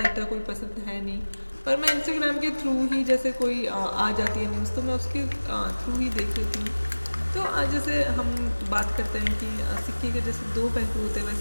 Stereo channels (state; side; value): inverted; both; correlation -1.00